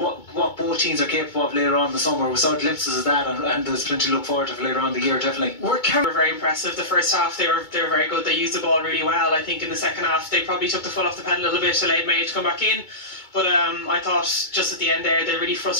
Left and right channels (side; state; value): right; late; 2.2 ms